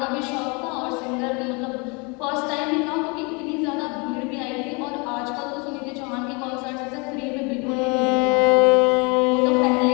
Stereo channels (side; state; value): right; quieter; 30.7 dB